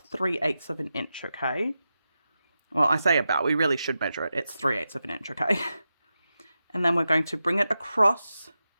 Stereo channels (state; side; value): inverted; both; correlation -0.90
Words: 3/8 of an inch, okay? Well, I say about, we really should measure it. It's 3/8 of an inch, okay? And then we're going to bring it across